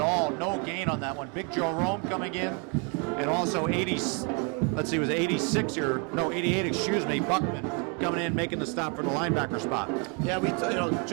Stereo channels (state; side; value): quieter; left; 34.6 dB